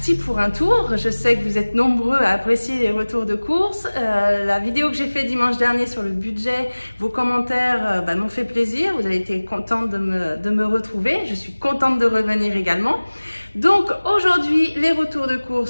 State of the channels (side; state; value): both; inverted; correlation -1.00